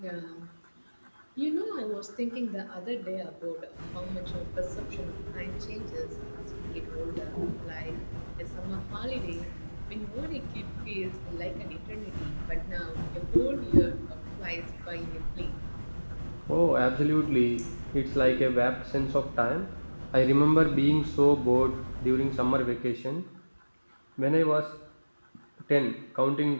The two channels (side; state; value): both; inverted; correlation -1.00